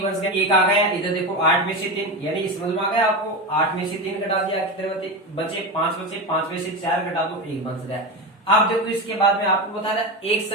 बच गया, 1 आ गया। इधर देखो 8 में से 3, यानी समझ में आ गया आपको, 8 में से 3 घटा दिया कितने बचे 5 बचे, 5 में से 4 घटा दो 1 बच गया। अब देखो इसके बाद में आपको बता रहा एक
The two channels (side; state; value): both; normal; correlation 0.19